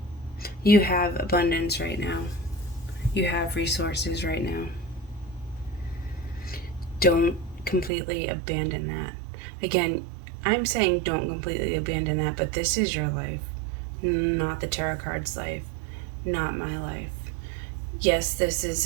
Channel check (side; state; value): left; drops out; at 7.9 s